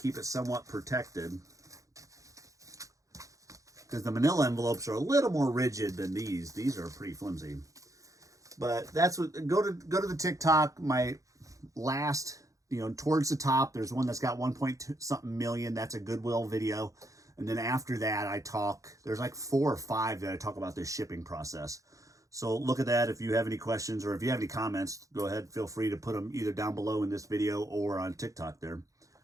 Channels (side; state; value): left; late; 0.16 ms